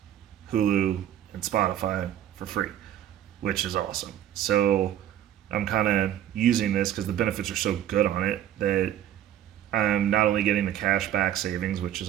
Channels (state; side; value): quieter; left; 11.4 dB